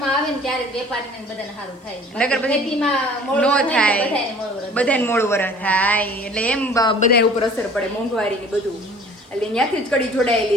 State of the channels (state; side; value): normal; both; correlation 0.49